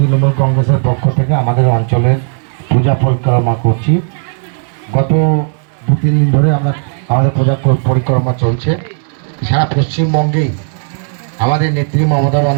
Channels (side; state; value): left; silent; 57 dB below the other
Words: কংগ্রেসের পক্ষ থেকে আমাদের অঞ্চলের পূজা পরিক্রমা করছি। গত 2-3 দিন ধরে আমাদের পূজা পরিক্রমা চলছে। সারা পশ্চিমবঙ্গেই আমাদের নেত্রী মমতা